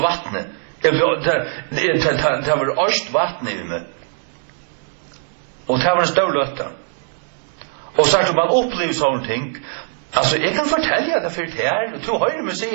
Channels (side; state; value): left; silent; 66 dB below the other